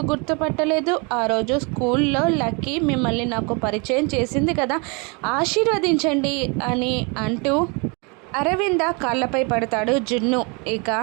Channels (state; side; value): quieter; left; 31.9 dB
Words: గుర్తుపట్టలేదు, ఆ రోజు స్కూల్లో లక్కీ మిమ్మల్ని నాకు పరిచయం చేసింది కదా, ఆశీర్వదించండి అని అంటూ అరవింద కాళ్ళపై పడతాడు జున్ను. ఇక